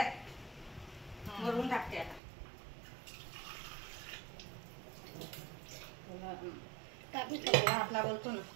वरून टाकते आता. आपला बोलतो ना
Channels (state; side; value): drops out; left; at 2.2 s